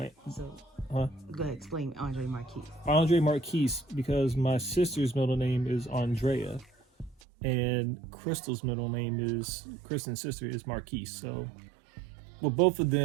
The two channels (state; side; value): drops out; left; at 7.2 s